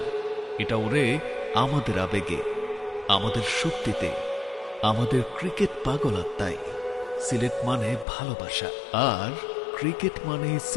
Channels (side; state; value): right; drops out; at 8.1 s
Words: এটা ওড়ে আমাদের আবেগে, আমাদের শক্তিতে, আমাদের ক্রিকেট পাগল আত্মায়। সিলেট মানে ভালোবাসা, আর ক্রিকেট মানে